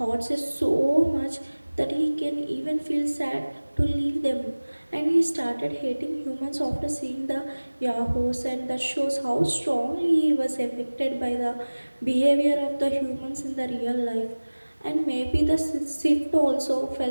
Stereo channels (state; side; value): inverted; both; correlation -1.00